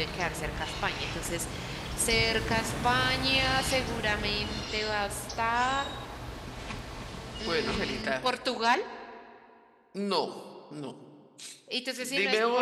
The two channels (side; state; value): both; identical; correlation 1.00